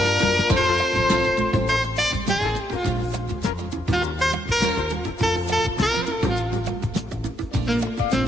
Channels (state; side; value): normal; both; correlation 0.77